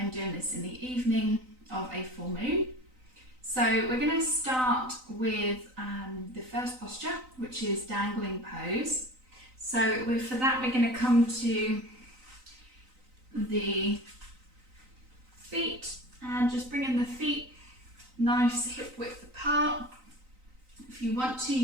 doing this in the evening of a full moon. So we're going to start with the first posture, which is dangling pose. So for that we're going to come to the feet and just bringing the feet nice hip width apart. If you want to,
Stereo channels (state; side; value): late; left; 3.9 ms